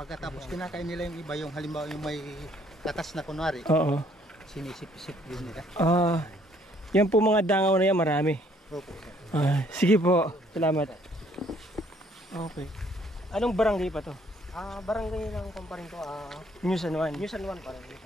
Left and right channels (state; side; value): normal; both; correlation 0.63